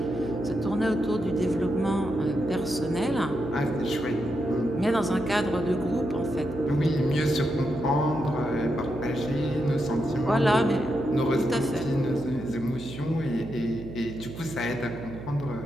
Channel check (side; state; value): right; noise; hum, 12 dB below the sound